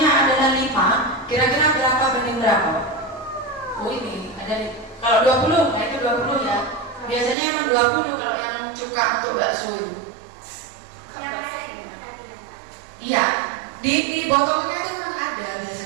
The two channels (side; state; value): left; drops out; at 7.4 s